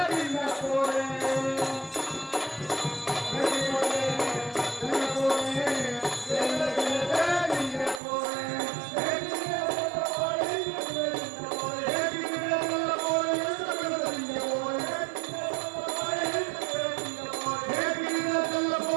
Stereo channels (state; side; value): drops out; left; at 8.0 s